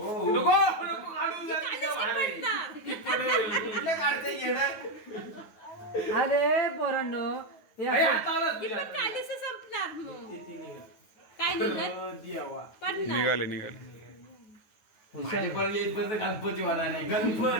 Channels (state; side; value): late; right; 9.3 ms